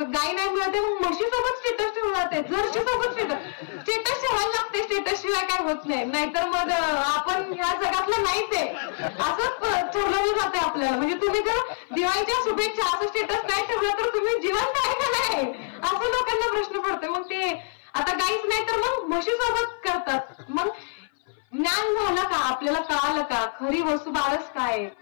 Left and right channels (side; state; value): right; silent; 58 dB below the other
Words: गाय नाही मिळते, म्हशी सोबत स्टेटस ठेवलं जाते, जर्सी सोबत स्टेटस ठेवायला लागते. स्टेटस शिवाय काय होत नाही. नाहीतर मग आपण ह्या जगातलं नाहीच आहे असं ठरवलं जाते आपल्याला. म्हणजे तुम्ही जर दिवाळीच्या शुभेच्छा असं स्टेटस नाही ठेवलं तर तुम्ही जिवंत आहे का नाही असं लोकांना प्रश्न पडतो. मग ते आता गाईच नाही तर मग म्हशी सोबत करतात. मग ज्ञान झालं का? आपल्याला कळालं का खरी वसुबारस काय?